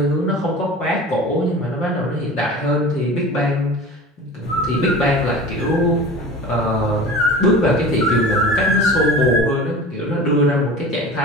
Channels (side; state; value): both; normal; correlation 0.37